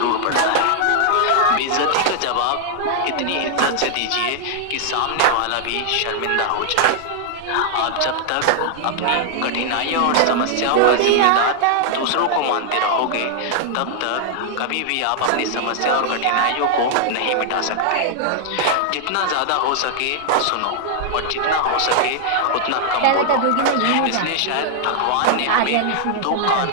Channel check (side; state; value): both; different; correlation -0.01